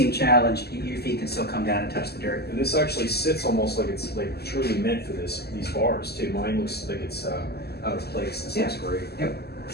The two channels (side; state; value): right; late; 0.46 ms